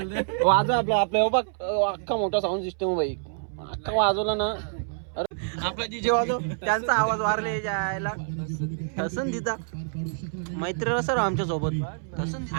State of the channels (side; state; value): left; silent; 60 dB below the other